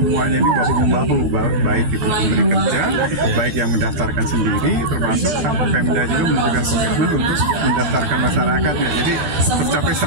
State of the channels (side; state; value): left; late; 13 ms